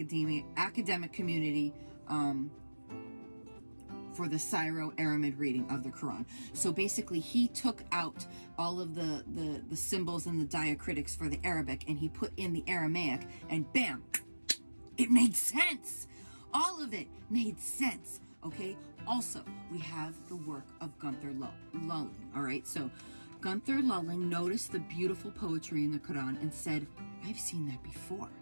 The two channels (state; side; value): inverted; both; correlation -1.00